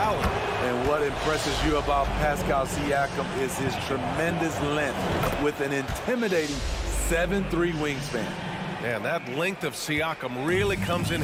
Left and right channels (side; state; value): both; identical; correlation 1.00